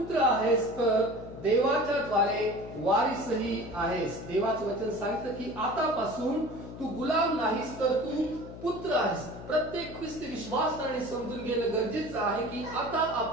आहेस तर देवाच्या द्वारे वारिसही आहेस. देवाचं वचन सांगतं की आतापासून तू गुलाम नाहीस तर तू पुत्र आहेस. प्रत्येक ख्रिस्ती विश्वासाने समजून घेणं गरजेचं आहे की आता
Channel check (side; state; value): left; noise; hum, 13 dB below the sound